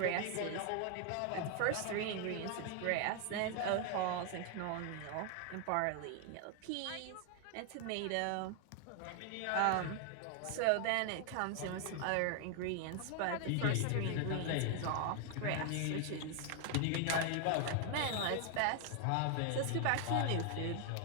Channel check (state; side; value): different; both; correlation 0.00